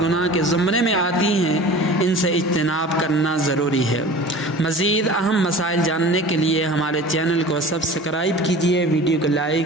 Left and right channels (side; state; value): both; normal; correlation 0.40